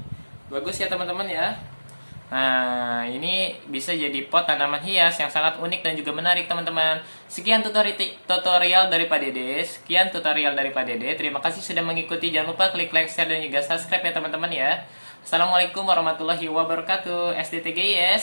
Bagus ya teman-teman ya. Nah, ini bisa jadi pot tanaman hias yang sangat unik dan juga menarik teman-teman. Sekian tutorial dari Pak Dede. Sekian tutorial dari Pak Dede. Terima kasih sudah mengikuti. Jangan lupa klik like, share, dan juga subscribe ya teman-teman ya. Assalamualaikum warahmatullahi wabarakatuh.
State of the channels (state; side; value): inverted; both; correlation -1.00